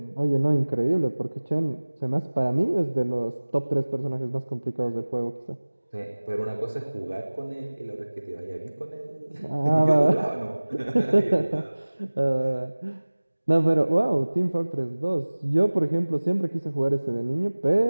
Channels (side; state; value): both; inverted; correlation -1.00